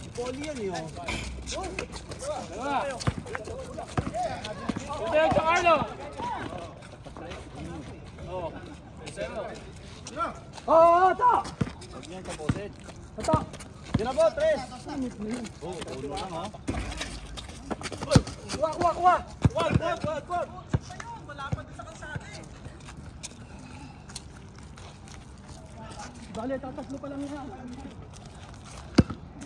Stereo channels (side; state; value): both; identical; correlation 1.00